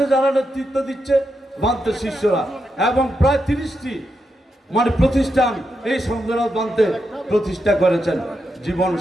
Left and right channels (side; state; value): both; normal; correlation 0.85